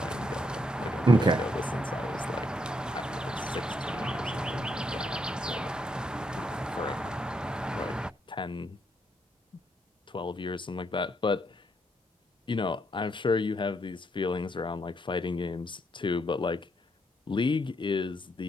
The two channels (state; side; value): normal; both; correlation 0.76